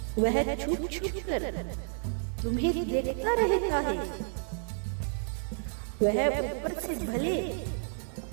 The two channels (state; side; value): silent; left; digital silence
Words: वह छुप छुप कर तुम्हें देखता रहता है। वह ऊपर से भले